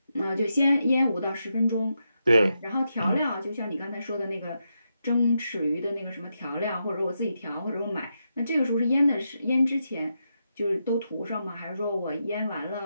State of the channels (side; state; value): both; inverted; correlation -0.85